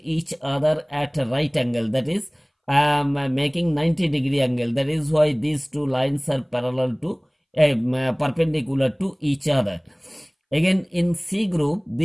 other at a right angle, that is making 90-degree angle. That is why these two lines are parallel to perpendicular to each other. Again in C group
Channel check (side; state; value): both; identical; correlation 1.00